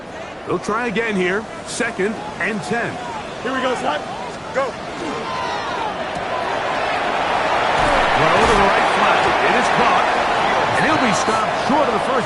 They'll try again here. 2nd and 10. Here we go, son. Go. Throw to the right flat. It is caught. And he'll be stopped short of the first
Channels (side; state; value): both; identical; correlation 1.00